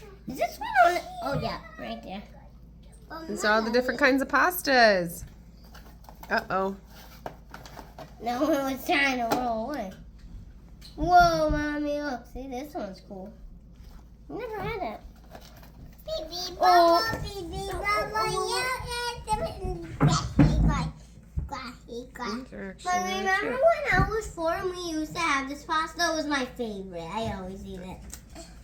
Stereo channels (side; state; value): both; identical; correlation 1.00